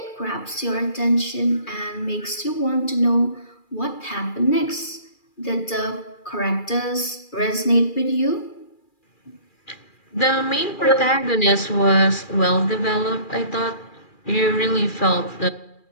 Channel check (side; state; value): right; late; 2.4 ms